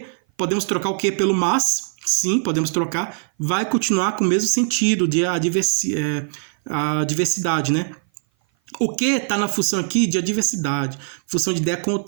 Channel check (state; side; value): silent; left; 57 dB below the other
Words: Podemos trocar o que pelo mas? Sim, podemos trocar. Vai continuar com o mesmo sentido de adversidade, né? O que está na função aqui de adversidade, função de ideia